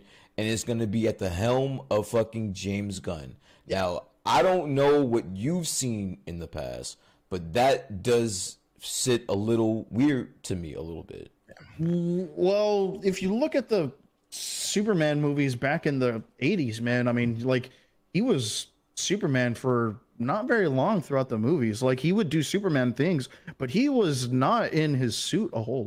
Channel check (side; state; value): both; identical; correlation 1.00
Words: and it's gonna be at the helm of fucking James Gunn. Now I don't know what you've seen in the past, but that does sit a little weird to me a little bit. Well, if you look at the Superman movies back in the 80s, man, I mean, like he was Superman for not very long throughout the movies. Like he would do Superman things, but he was not in his suit a whole